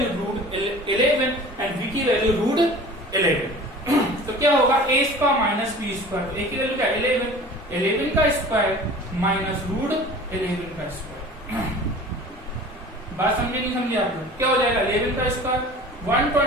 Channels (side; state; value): both; normal; correlation 0.42